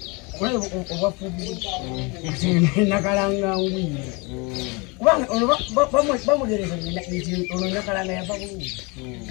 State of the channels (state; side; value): quieter; right; 28.7 dB